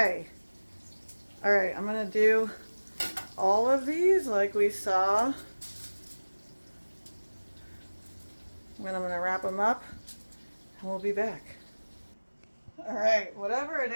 All right, I'm gonna do all of these like we saw. Then I'm gonna wrap them up and we'll be back. All right, whatever it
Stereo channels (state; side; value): inverted; both; correlation -1.00